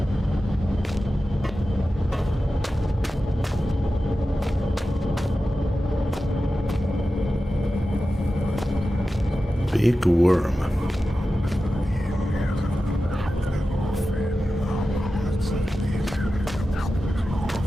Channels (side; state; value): both; normal; correlation 0.93